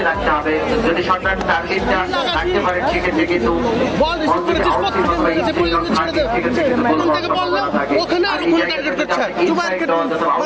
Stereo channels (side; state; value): both; identical; correlation 1.00